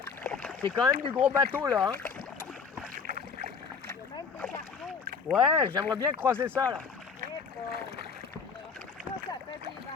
C'est quand même du gros bateau, là. Hein. Il y a même des cargos. Ouais, j'aimerais bien croiser ça, là. Eh bon. Ça fait des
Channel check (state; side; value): quieter; right; 5.6 dB